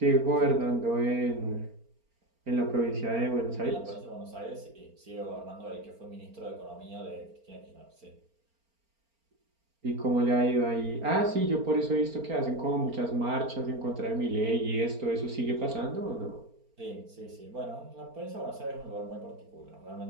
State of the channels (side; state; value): left; late; 4.4 ms